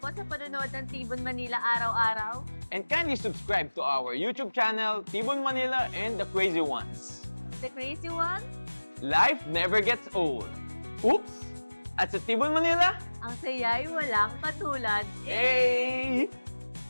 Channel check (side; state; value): both; inverted; correlation -1.00